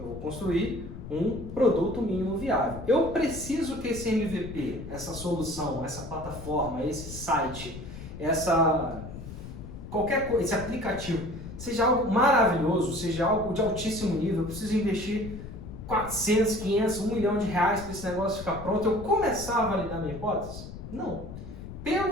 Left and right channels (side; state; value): left; noise; rumble, 11 dB below the sound